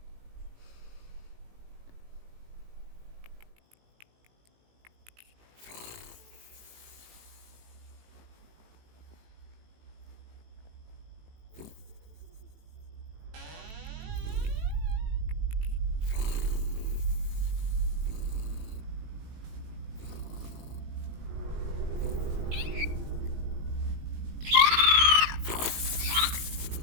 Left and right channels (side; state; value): left; late; 18 ms